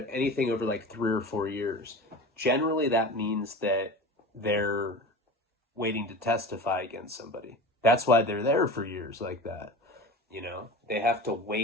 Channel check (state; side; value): normal; both; correlation 0.33